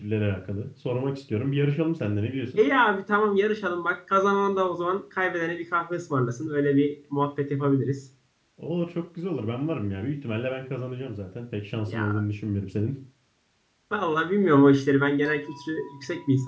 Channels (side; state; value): both; identical; correlation 1.00